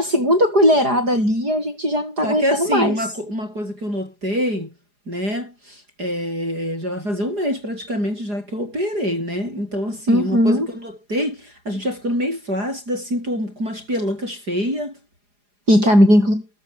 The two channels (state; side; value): late; left; 4.9 ms